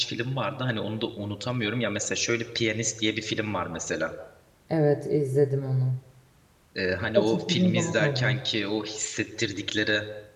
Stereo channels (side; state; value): both; identical; correlation 1.00